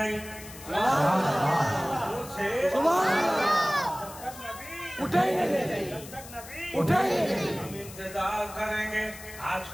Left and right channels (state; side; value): noise; left; hiss, 16 dB below the sound